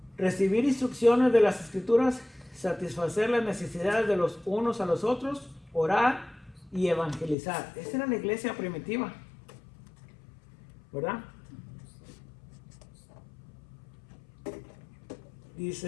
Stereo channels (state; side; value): drops out; right; at 7.4 s